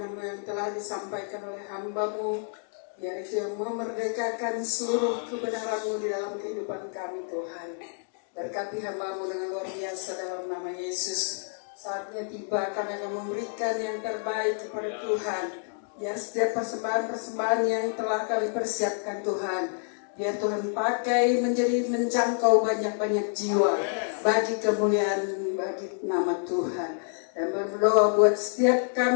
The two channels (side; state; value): right; silent; 59 dB below the other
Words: yang telah disampaikan oleh hamba-Mu, biar itu yang memerdekakan seluruh kebenaran-Mu di dalam kehidupan kami Tuhan. Berkati hamba-Mu dengan luar biasa dalam nama Yesus. Saatnya tiba kami akan memberikan yang terbaik kepada Tuhan. Biar setiap persembahan-persembahan yang telah kami persiapkan Tuhan, biar Tuhan pakai menjangkau banyak-banyak jiwa bagi kemuliaan bagi nama Tuhan. Dan berdoa buat setiap